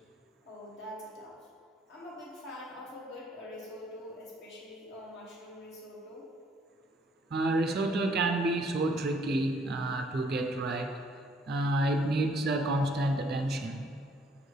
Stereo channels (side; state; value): both; normal; correlation 0.65